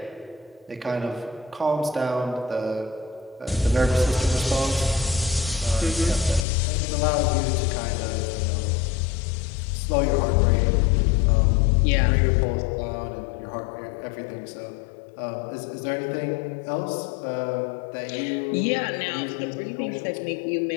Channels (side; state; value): right; drops out; at 6.5 s